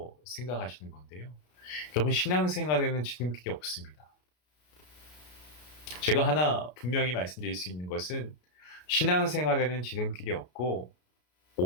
생각하시는 건데요. 여러분, 신앙생활에는 지름길이 없습니다. 제가 하나 분명히 말씀드릴 수 있는 것은 신앙생활에는 지름길이 없고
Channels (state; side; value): late; right; 33 ms